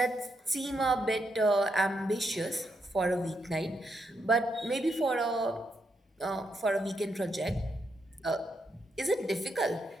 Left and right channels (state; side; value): normal; both; correlation 0.80